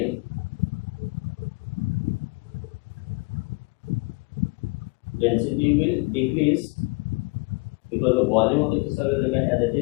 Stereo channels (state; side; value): quieter; right; 27.3 dB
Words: decrease because the volume of the crystal will remain as it